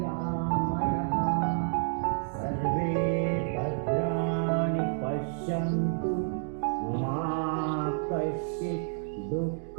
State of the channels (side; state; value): left; silent; digital silence